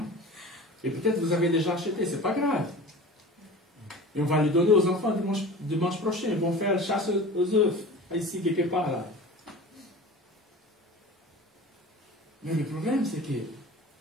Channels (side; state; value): both; normal; correlation 0.37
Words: Et peut-être vous avez déjà acheté, c'est pas grave. Et on va le donner aux enfants dimanche prochain. Ils vont faire la chasse aux œufs, ici, quelque part là. Mais le problème, c'est que